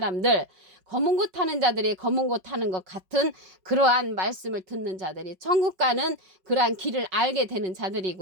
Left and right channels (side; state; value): left; late; 5.3 ms